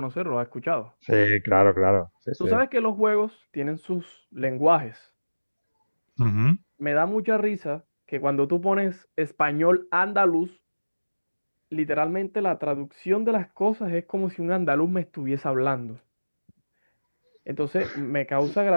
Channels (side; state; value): both; inverted; correlation -1.00